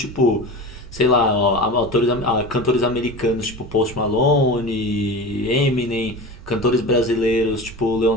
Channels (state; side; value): noise; right; rumble, 18 dB below the sound